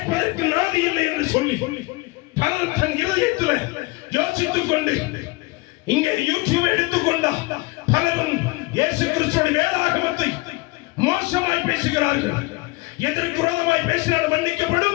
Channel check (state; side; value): quieter; right; 23.6 dB